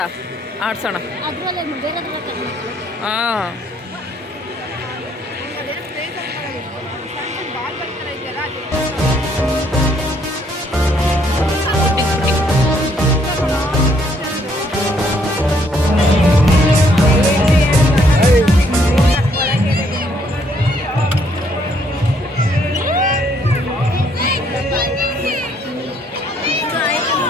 ಆಡ್ಸೋಣ. ಅದರಲ್ಲೇ ಬೇರೆ ಹಾಂ,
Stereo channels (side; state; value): both; normal; correlation 0.68